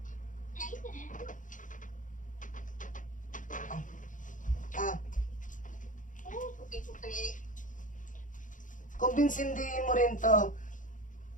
Kumbinsindihin mo rin to.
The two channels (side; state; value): right; late; 0.38 ms